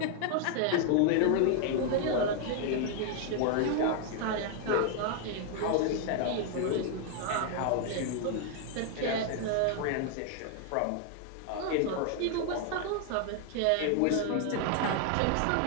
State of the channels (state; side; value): different; both; correlation 0.00